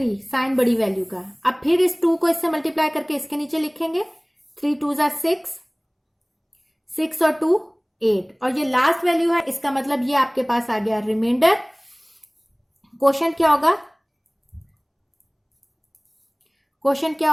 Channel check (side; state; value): both; identical; correlation 1.00